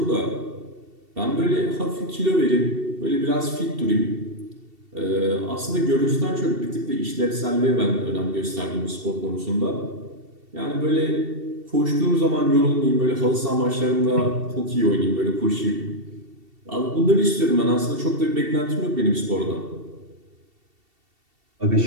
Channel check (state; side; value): late; left; 2.7 ms